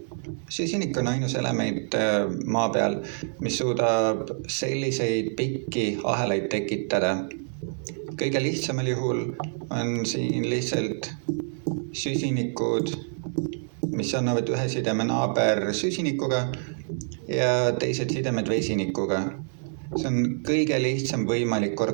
Süsinik on ainus element maa peal, mis suudab selliseid pikki ahelaid tekitada. Kõige lihtsamal juhul on siin lihtsalt süsinikud, mis annavad ühe sideme naaber süsinikuga ja teised sidemed vesinikuga. See on kõige lihtsam võimalik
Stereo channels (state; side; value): silent; left; digital silence